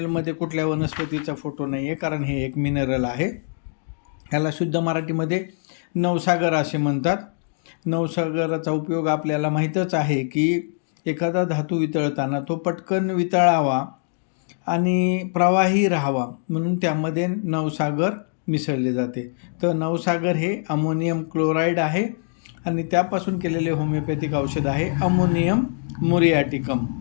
कुठल्या वनस्पतीचा फोटो नाही आहे, कारण हे एक मिनरल आहे. ह्याला शुद्ध मराठीमध्ये नवसागर असे म्हणतात. नवसागराचा उपयोग आपल्याला माहीतच आहे की एखादा धातू वितळताना तो पटकन वितळावा आणि प्रवाही राहावा म्हणून त्यामध्ये नवसागर मिसळले जाते. तर नवसागर हे अमोनियम क्लोराईड आहे आणि त्यापासून केलेले होमिओपॅथिक औषध आहे अमोनियम मुरियाटिकम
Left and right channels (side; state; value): right; silent; digital silence